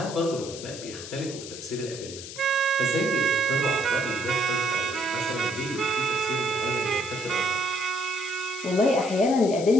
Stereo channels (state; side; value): noise; left; hiss, 11 dB below the sound